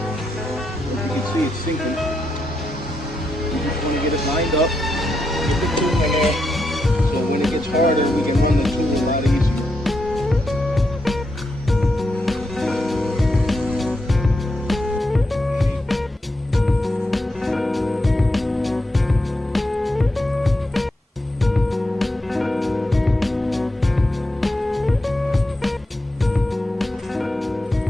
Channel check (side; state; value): both; normal; correlation 0.84